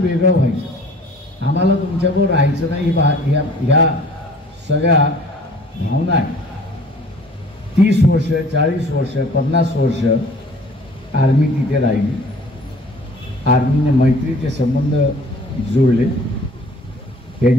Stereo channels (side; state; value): both; normal; correlation 0.51